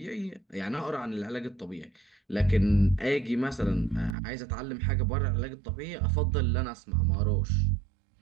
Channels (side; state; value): left; drops out; at 4.2 s